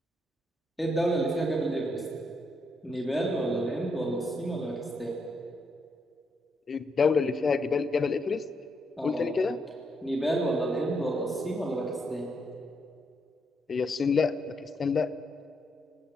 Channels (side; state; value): both; normal; correlation 0.78